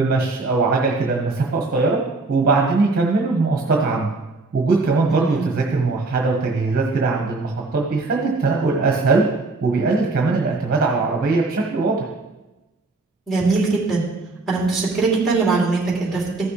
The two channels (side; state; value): left; quieter; 3.4 dB